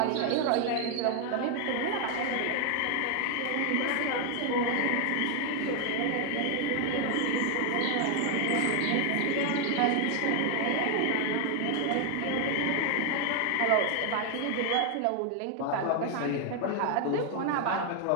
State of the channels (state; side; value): different; both; correlation 0.01